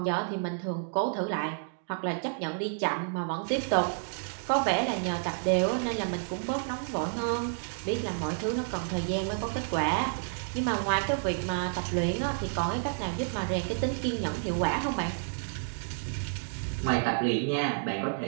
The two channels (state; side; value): silent; left; digital silence